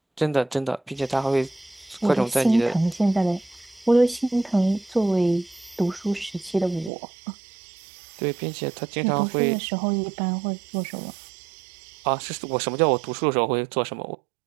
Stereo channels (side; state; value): left; drops out; at 6.9 s